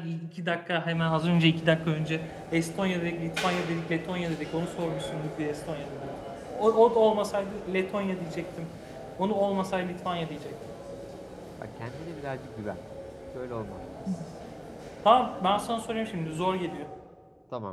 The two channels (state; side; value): identical; both; correlation 1.00